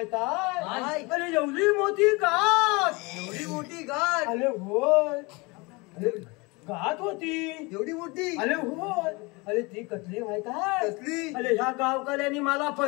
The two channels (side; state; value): right; quieter; 26.4 dB